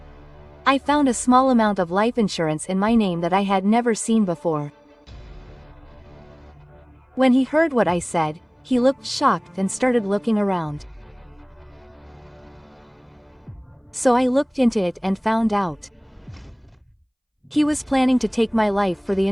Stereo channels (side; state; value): both; identical; correlation 1.00